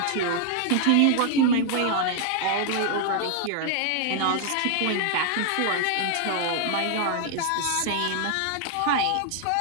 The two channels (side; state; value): both; different; correlation 0.00